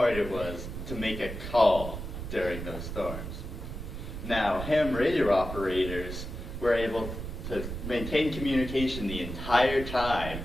it was to make a call during those storms? Now, ham radio operators were able to maintain communication the entire time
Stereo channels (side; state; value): right; noise; rumble, 7 dB below the sound